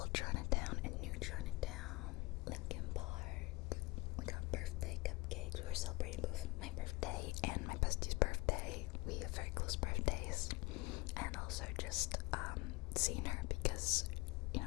Chinatown and New Chinatown, Lincoln Park. We got birthday cupcakes. We were celebrating both my birthday and my bestie's birthday. We have very close birthdays. And also just seeing her because, you know,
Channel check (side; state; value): right; quieter; 23.1 dB